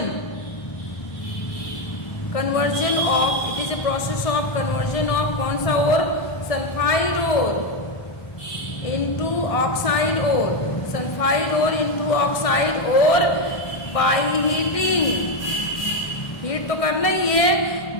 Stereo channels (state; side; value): late; right; 1.6 ms